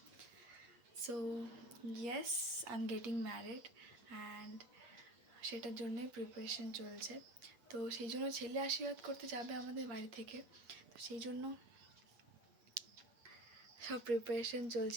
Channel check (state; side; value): late; left; 8.5 ms